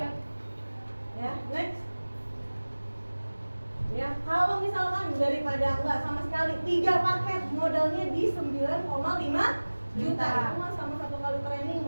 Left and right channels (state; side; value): inverted; both; correlation -1.00